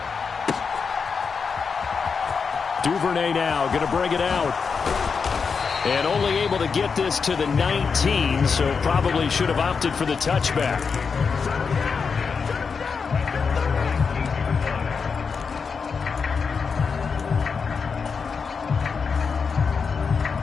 Duvernay now going to bring it out. And only able to get this to the 19, so probably should have opted for the touchback.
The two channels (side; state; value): right; quieter; 5.5 dB